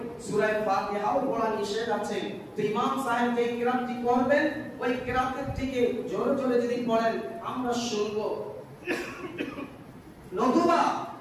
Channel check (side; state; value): both; identical; correlation 1.00